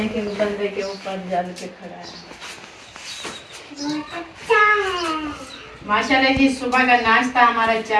एक बंदे के ऊपर जल के खड़ा है। माशाल्लाह जी, सुबह का नाश्ता हमारा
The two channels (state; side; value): identical; both; correlation 1.00